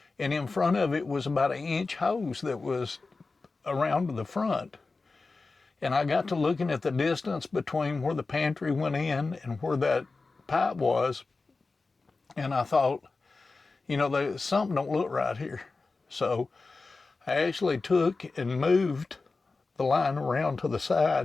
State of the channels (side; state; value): right; quieter; 3.9 dB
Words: And in front of it was about an inch hose that was around to the front. And I got to looking at the distance between where the pantry went in and where that pipe was. And I thought, you know, something don't look right here. So I actually took and moved the line around to the